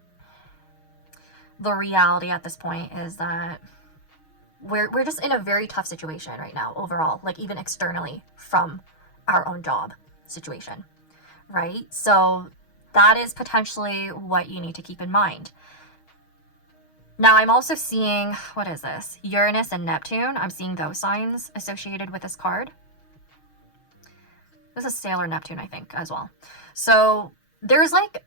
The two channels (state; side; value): late; right; 6.4 ms